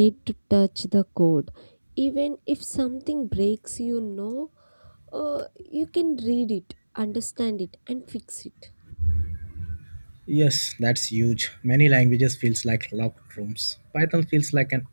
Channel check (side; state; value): both; inverted; correlation -1.00